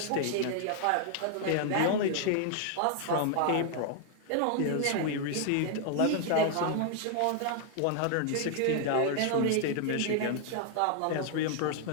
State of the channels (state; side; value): different; both; correlation 0.00